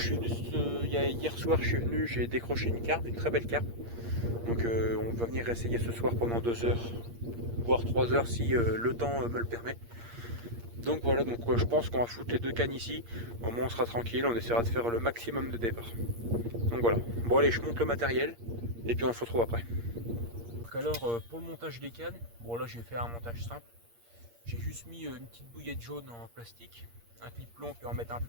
venu, hier soir je suis venu, j'ai décroché une carpe, une très belle carpe. Donc on va venir essayer ce soir pendant 2 heures, voire 3 heures si le temps me le permet. Donc voilà, donc je pense qu'on va foutre les deux cannes ici. Au moins on sera tranquille, on essaiera de faire le maximum de départ. Donc voilà. Bon allez, je monte le matériel et puis on se retrouve après. Donc alors pour le montage des cannes, bon là j'ai fait un montage simple. J'ai juste mis une petite bouillette jaune en plastique, un clip plomb, puis on va mettre un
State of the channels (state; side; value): late; left; 8.6 ms